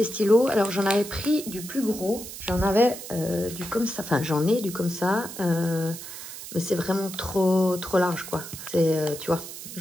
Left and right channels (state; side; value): noise; right; hiss, 11 dB below the sound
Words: stylos, alors j'en avais pris du plus gros. J'en avais du comme ça, enfin j'en ai du comme ça. Mais c'est vraiment trop large quoi. C'est, tu vois,